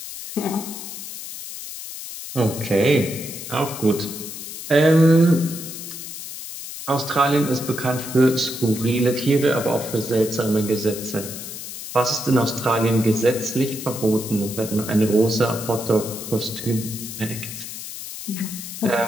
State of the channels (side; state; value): left; noise; hiss, 10 dB below the sound